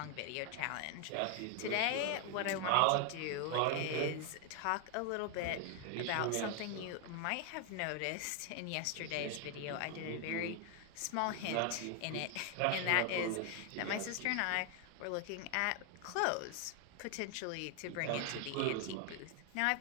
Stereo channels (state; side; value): different; both; correlation 0.01